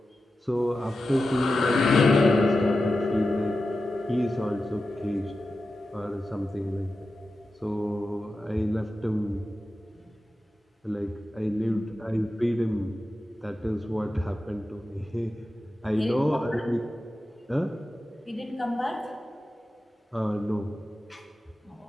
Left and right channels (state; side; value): normal; both; correlation 0.92